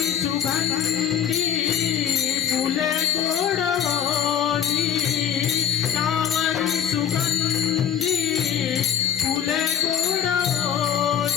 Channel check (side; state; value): right; quieter; 9.1 dB